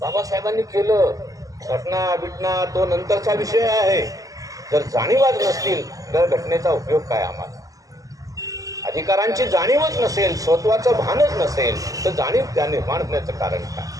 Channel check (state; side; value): late; left; 0.17 ms